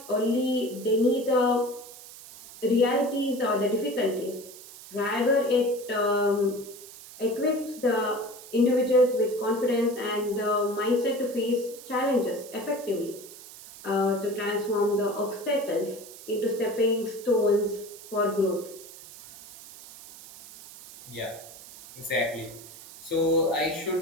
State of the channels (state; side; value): noise; right; hiss, 17 dB below the sound